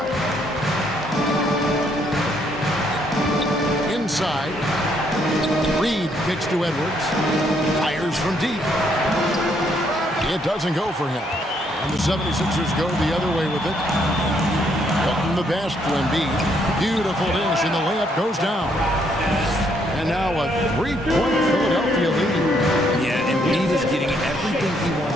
Inside. Reed kicks to Edwards. Fires from deep. It doesn't go for him. And the 76ers go the other way with it. Hilton the pass to Embiid. Beautiful dish, and the layup goes down. And now a three-point Philadelphia lead. Yeah, Embiid is getting everything he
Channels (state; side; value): normal; both; correlation 0.71